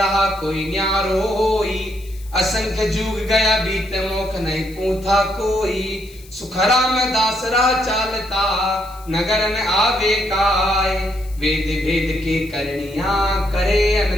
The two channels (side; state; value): left; noise; hiss, 23 dB below the sound